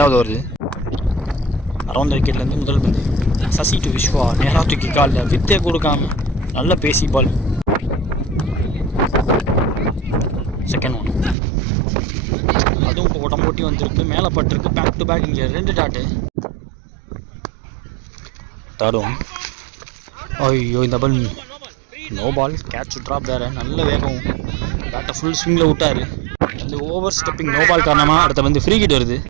வருது. அரௌண்ட் விக்கெட்லேருந்து முதல் பந்து. சசி டு விஸ்வா. நேராக தூக்கி காலில் வித்தே கொடுக்காம நல்ல பேசி பால். Second one. அதுவும் இப்போ உடம்பு ஒட்டி வந்திருக்கு. மேலே பட்டிருக்கு. Back to back. இங்கே 2 டாட்டு. Third one. ஐயோ இந்த ball no ball. Catch drop வேறு. நல்ல வேகம். பேட்டை ஃபுல் ஸ்விங்கில் விட்டார். அந்த ஓவர் ஸ்டெப்பிங் நோ பால் காரணமாக அடுத்த வந்து ஃப்ரீ கிட் வருது.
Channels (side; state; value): left; drops out; at 11.4 s